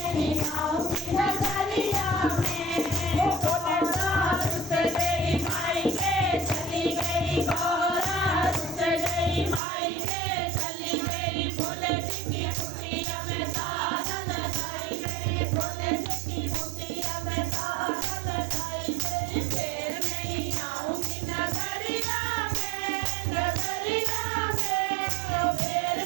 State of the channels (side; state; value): left; drops out; at 9.6 s